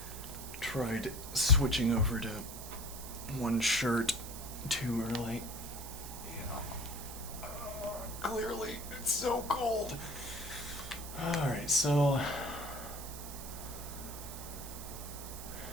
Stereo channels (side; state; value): right; noise; hiss, 11 dB below the sound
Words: Tried switching over to one shirt too early. Clearly, it's so cold. Alright, so.